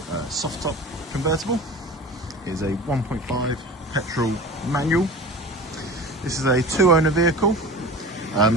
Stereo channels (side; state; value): both; normal; correlation 0.36